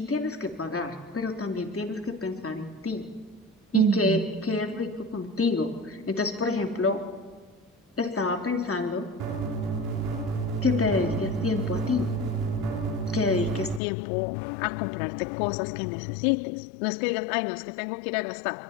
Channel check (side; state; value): right; drops out; at 13.8 s